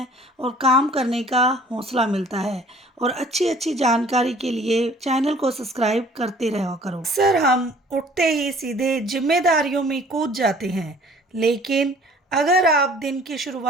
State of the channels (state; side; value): normal; both; correlation 0.53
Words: और काम करने का हौसला मिलता है। और अच्छी अच्छी जानकारी के लिए चैनल को सब्सक्राइब करते रहा करो। सर, हम उठते ही सीधे जिम्मेदारियों में कूद जाते हैं, लेकिन अगर आप दिन की